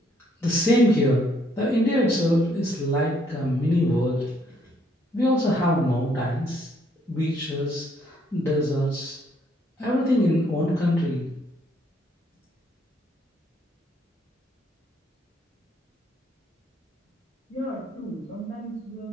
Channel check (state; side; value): normal; both; correlation 0.68